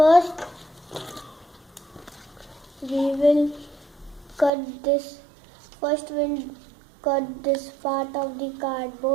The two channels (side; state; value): left; drops out; at 4.5 s